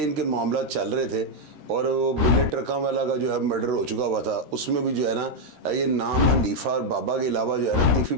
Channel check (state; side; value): late; left; 13 ms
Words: इनके मामला चल रहे थे और वो बिल्ले ट्रका वाला का जो है मर्डर हो चुका हुआ था। उसमें भी जो है ना, ये नाम हनीफा और बाबा के अलावा जो है ना तीफी